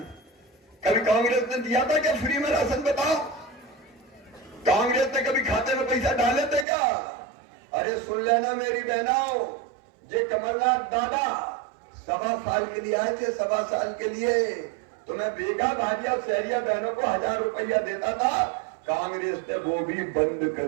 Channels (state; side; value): drops out; left; at 6.7 s